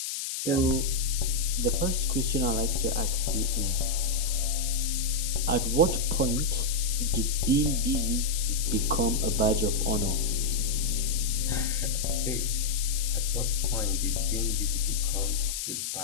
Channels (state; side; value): noise; left; hiss, 4 dB below the sound